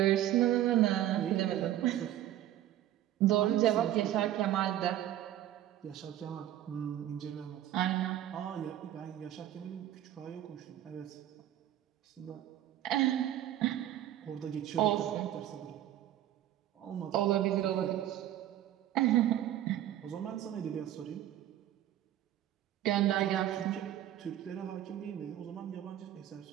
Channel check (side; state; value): left; quieter; 12.5 dB